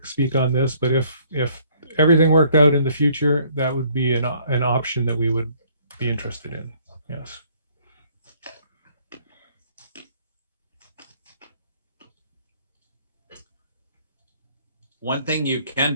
speak on this, but if everything worked out in the future, that would be an option that we would be interested in. Yes. One thing you can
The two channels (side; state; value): both; inverted; correlation -0.62